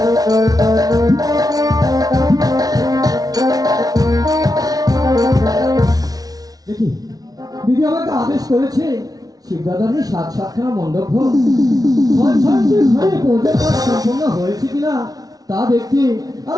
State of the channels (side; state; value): left; late; 0.18 ms